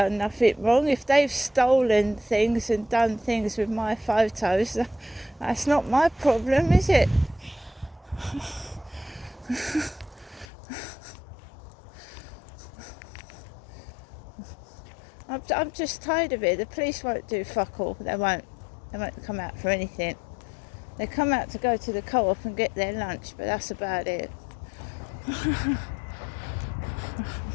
nothing wrong. If they've stolen things and done things with my photos, that's not my problem, is it? I'm just tired of it. The police won't do fuck all. They won't come out for anything. They come out to go to the co-op and get their lunch, but that's about it.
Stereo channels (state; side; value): drops out; right; at 10.5 s